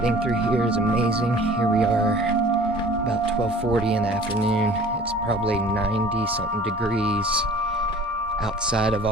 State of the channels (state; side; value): normal; both; correlation 0.46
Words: through here is amazing. Here we are about 12:40 in the afternoon. It's probably 90 something degrees. Outside of